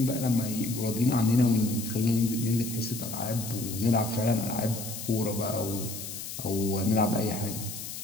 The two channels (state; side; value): noise; left; hiss, 8 dB below the sound